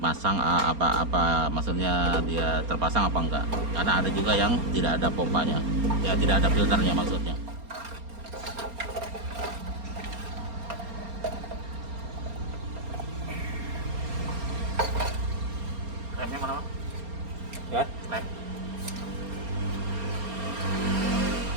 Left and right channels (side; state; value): left; late; 4.3 ms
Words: apa maksudnya dia terpasang apa enggak, karena ada juga yang tidak ada pompanya ya, tidak ada filternya maksudnya. Remnya mana ya? Remnya